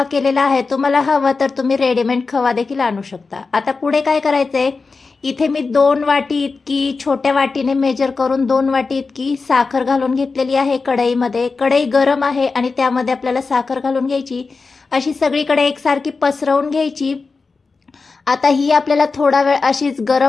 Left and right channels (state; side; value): quieter; right; 4.3 dB